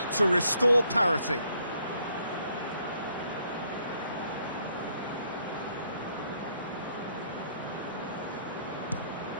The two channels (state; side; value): inverted; both; correlation -0.69